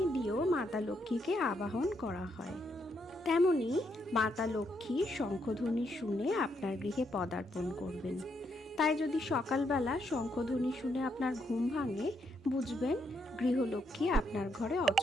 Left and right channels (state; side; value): normal; both; correlation 0.77